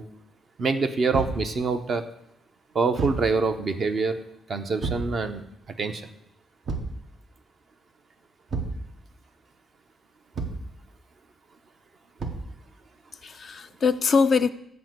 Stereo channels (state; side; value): normal; both; correlation 0.74